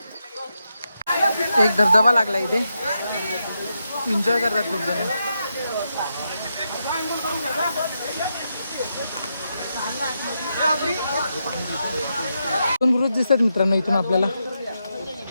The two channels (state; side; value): inverted; both; correlation -0.85